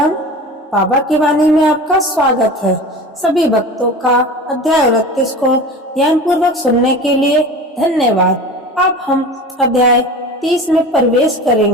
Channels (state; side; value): normal; both; correlation 0.34